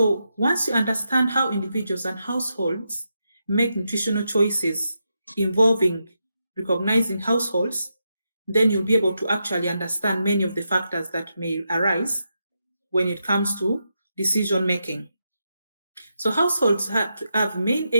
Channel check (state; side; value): inverted; both; correlation -0.85